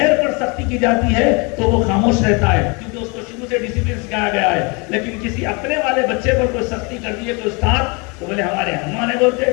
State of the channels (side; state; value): right; quieter; 30.4 dB